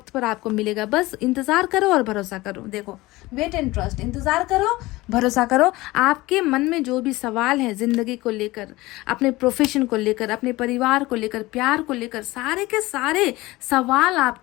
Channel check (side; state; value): right; quieter; 19.9 dB